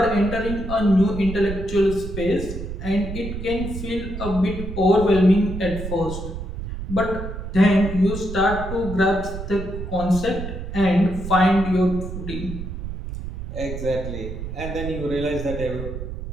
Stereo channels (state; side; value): noise; right; rumble, 7 dB below the sound